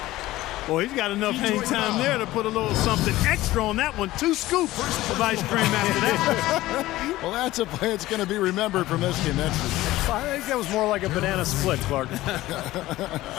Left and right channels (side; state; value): right; quieter; 16.7 dB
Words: Boy, he's got enough hang time there to put a little something extra on that one. 2 scoops of ice cream after that. Well, that's a play that's going to be remembered from this game. That's I think that was more like a banana split, Clark.